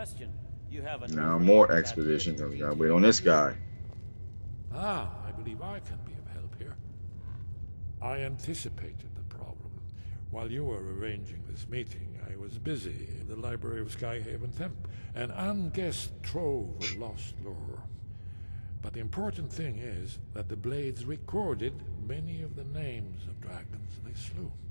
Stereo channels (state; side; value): inverted; both; correlation -1.00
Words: You have a Now more expedition, because we gotta wait on this guy. Ah, I believe I can be of help here. I anticipated the problem. While you were arranging this meeting, I was busy in the library of Skyhaven Temp, an unguessed trove of lost lore. But the important thing is that the Blades recorded many of the names of dragons they slew.